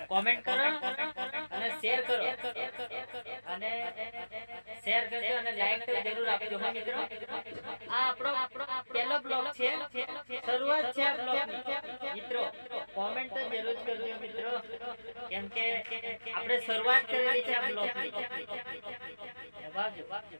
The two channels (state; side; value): inverted; both; correlation -1.00